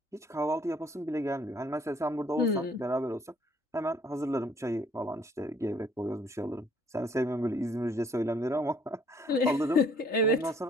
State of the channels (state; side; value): normal; both; correlation 0.62